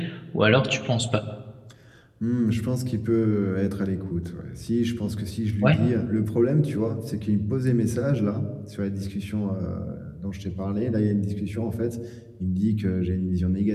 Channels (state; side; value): identical; both; correlation 1.00